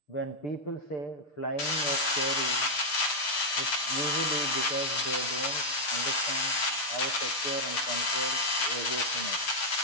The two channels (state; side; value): late; right; 6.7 ms